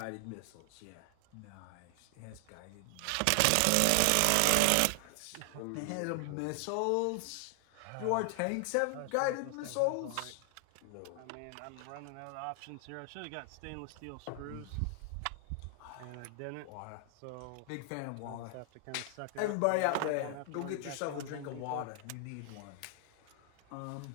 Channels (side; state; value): both; different; correlation 0.00